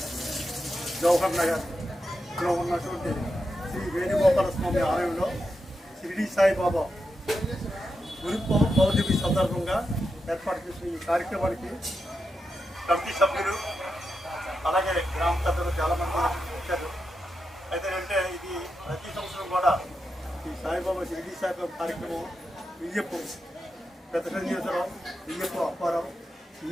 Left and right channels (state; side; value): normal; both; correlation 0.87